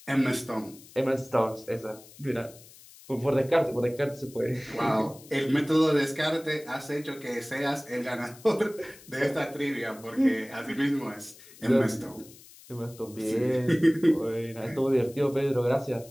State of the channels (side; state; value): left; noise; hiss, 21 dB below the sound